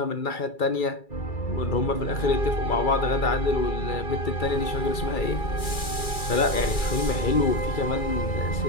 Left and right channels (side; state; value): right; late; 2.3 ms